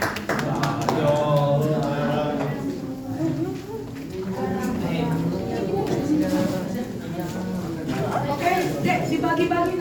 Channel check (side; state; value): both; identical; correlation 1.00